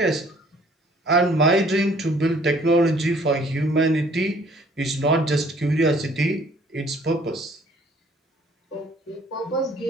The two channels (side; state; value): both; normal; correlation 0.58